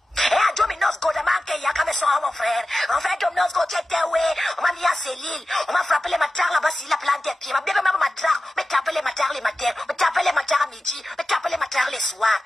Et à Dominos Godaman, il y a comme ça, mon frère. En fait, Dominos Go, tu étais où? On m'a mis à Céline. On m'a frappé les matards là-bas, si la plante des pieds. Ma bébé m'a matar. On m'a tapé les matards les matins. On m'a tapé les matards à midi. On m'a tapé les matards les soirs.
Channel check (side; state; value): both; normal; correlation 0.94